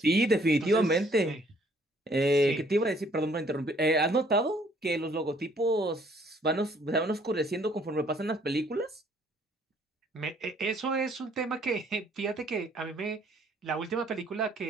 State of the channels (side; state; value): both; normal; correlation 0.62